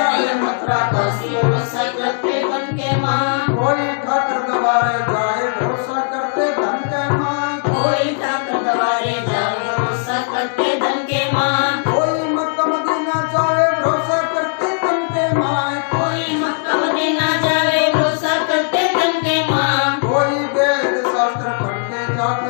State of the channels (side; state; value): right; silent; digital silence